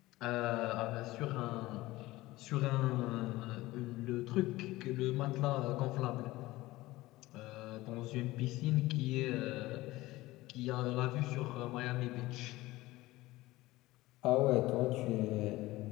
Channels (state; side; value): quieter; right; 18.6 dB